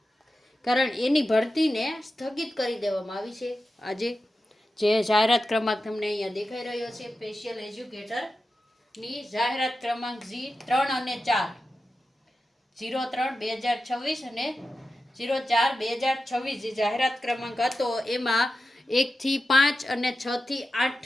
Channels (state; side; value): normal; both; correlation 0.92